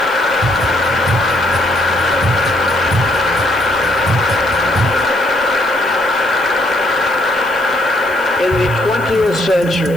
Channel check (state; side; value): noise; left; hiss, 22 dB below the sound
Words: In the 20th